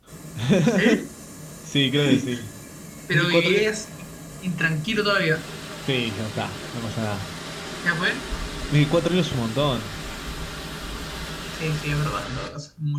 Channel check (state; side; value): identical; both; correlation 1.00